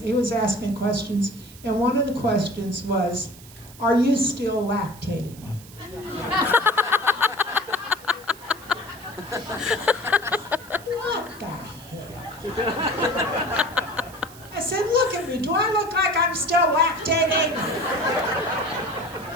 was asking questions, and one of the questions was, "Are you still lactating?" What the hell? I said, "Look at me. Do I look like I'm still lactating?"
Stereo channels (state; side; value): noise; right; hiss, 20 dB below the sound